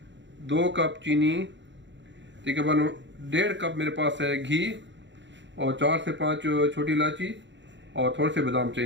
2 कप चीनी, तकरीबन 1.5 कप मेरे पास है घी और 4 से 5 छोटी इलायची और थोड़े से बादाम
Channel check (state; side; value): late; left; 0.53 ms